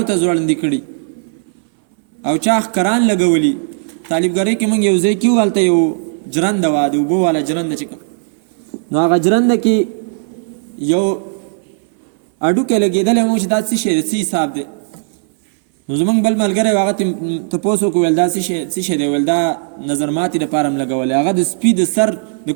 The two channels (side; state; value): left; silent; 61 dB below the other